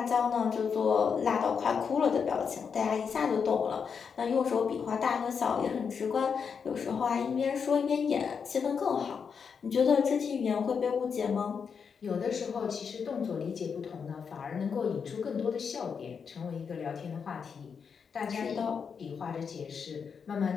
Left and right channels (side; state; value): right; quieter; 6.3 dB